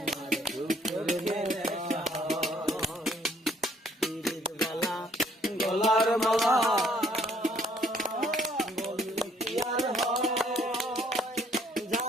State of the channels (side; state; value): both; normal; correlation 0.64